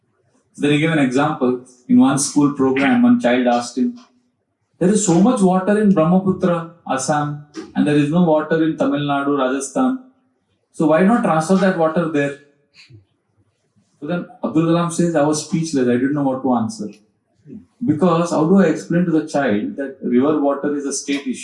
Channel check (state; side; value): identical; both; correlation 1.00